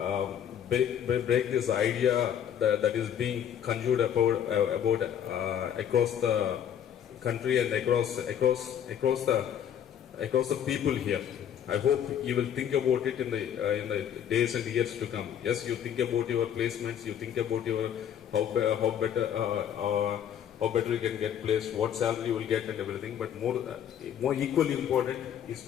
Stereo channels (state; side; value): quieter; right; 9.3 dB